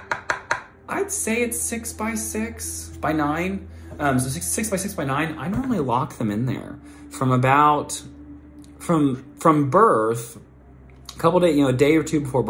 I'd say it's 6 by 6 by 9. So 6 by 6 by 9. I normally lock them in there from birth. A couple days, a day or two before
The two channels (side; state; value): both; identical; correlation 1.00